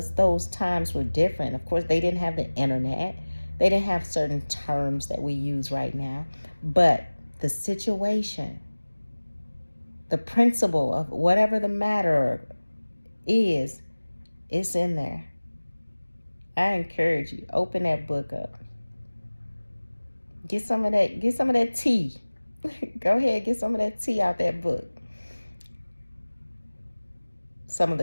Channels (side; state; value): both; inverted; correlation -1.00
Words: those times were different. Of course, they didn't have the internet. They didn't have certain terms that we use right now. But the situation, the principle of whatever the matter is, it's in there. I encourage you, open that book up. Get some of that tea. Go ahead, get some of that tea out that book. Some of